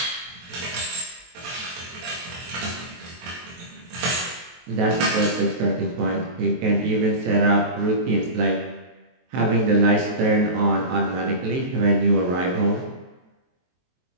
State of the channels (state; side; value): late; left; 23 ms